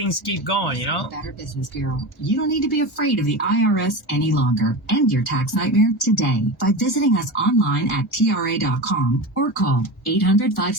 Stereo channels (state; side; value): normal; both; correlation 0.25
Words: keep going, you know? Better Business Bureau. You don't need to be afraid of the IRS any longer. End your tax nightmare today by visiting us online at tra.com or call